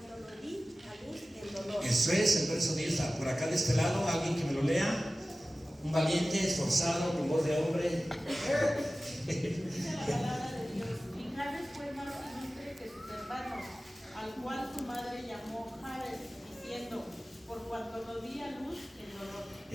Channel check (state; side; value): normal; both; correlation 0.96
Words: lo di a luz en dolor. Eso es el verso 10. Por acá de este lado, alguien que me lo lea. Un valiente, esforzado, con voz de hombre. Dice la palabra de Dios: y Jabez fue más ilustre que sus hermanos, al cual su madre llamó Jabez, diciendo: por cuanto lo di a luz en dolor.